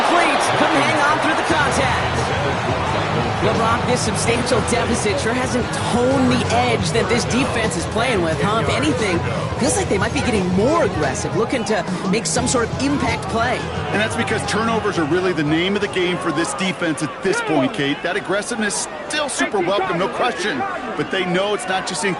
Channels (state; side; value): identical; both; correlation 1.00